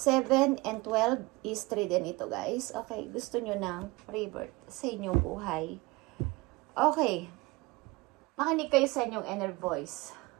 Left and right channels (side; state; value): left; quieter; 22.8 dB